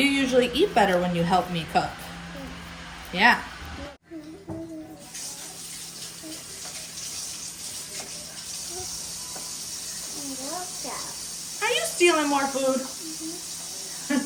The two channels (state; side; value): identical; both; correlation 1.00